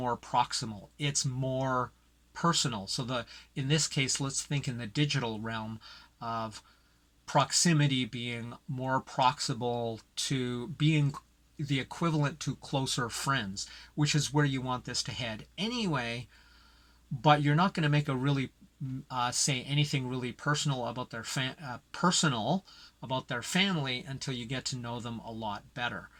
proximal. It's more personal. So in this case, let's think in the digital realm of proximity being more proximal to being the equivalent to closer friends, which is where you want this to head anyway. But you're not going to make a really say anything really personal about their family until you get to know them a lot better.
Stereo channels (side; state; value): both; identical; correlation 1.00